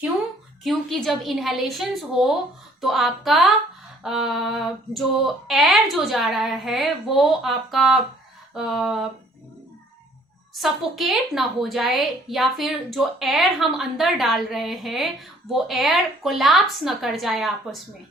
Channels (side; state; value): both; normal; correlation 0.59